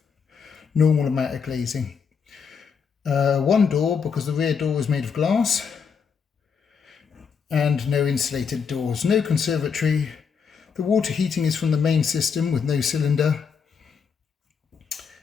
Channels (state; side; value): quieter; right; 6.2 dB